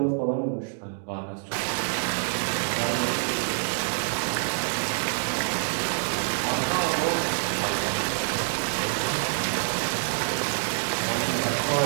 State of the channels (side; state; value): left; silent; digital silence